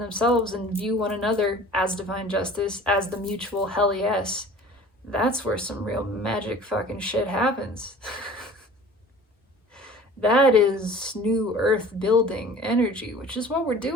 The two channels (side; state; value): both; normal; correlation 0.45